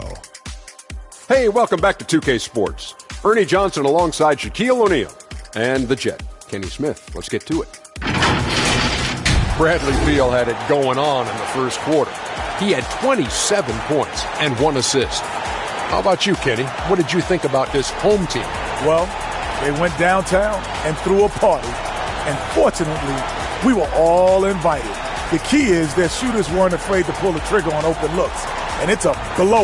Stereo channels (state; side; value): identical; both; correlation 1.00